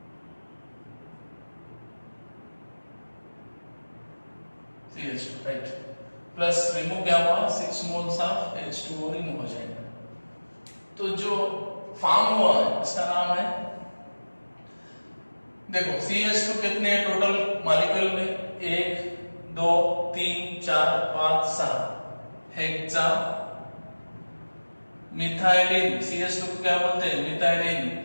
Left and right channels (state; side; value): inverted; both; correlation -1.00